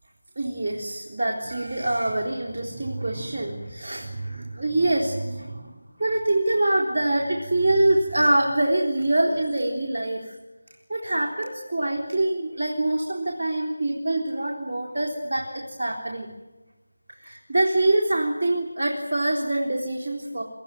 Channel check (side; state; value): both; inverted; correlation -0.96